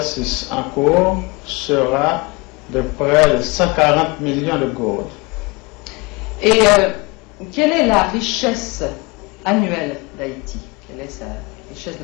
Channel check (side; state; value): right; quieter; 26.2 dB